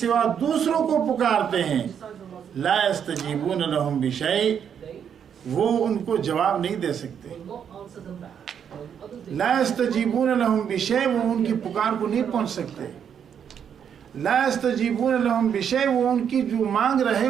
دوسروں کو پکارتے ہیں، لا یستجیبون لہم بشیء، وہ ان کو جواب نہیں دے سکتے، لا یستجیبون لہم بشیء، وہ ان کی پکار کو نہیں پہنچ سکتے، لا یستجیبون لہم بشیء، وہ ان کی جو مانگ رہے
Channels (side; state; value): left; quieter; 8.1 dB